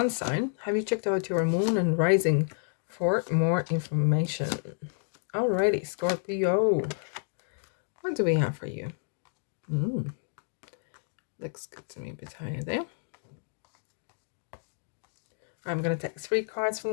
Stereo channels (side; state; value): right; silent; digital silence